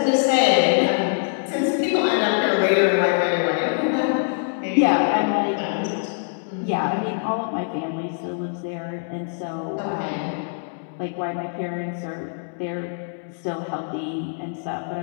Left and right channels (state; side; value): silent; right; digital silence